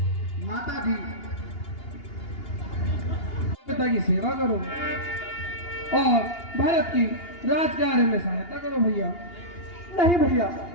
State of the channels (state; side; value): late; right; 2.8 ms